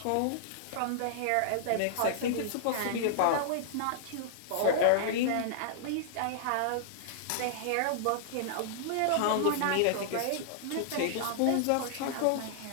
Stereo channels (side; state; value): both; different; correlation -0.01